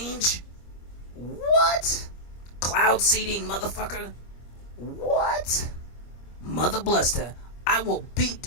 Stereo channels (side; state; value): right; late; 25 ms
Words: What? Cloud seeding, motherfucker? What? Mother bluster. I will beat